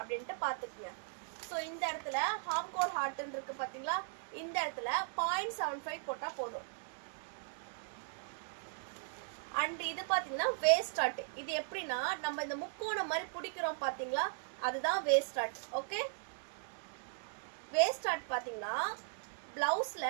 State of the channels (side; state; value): left; silent; digital silence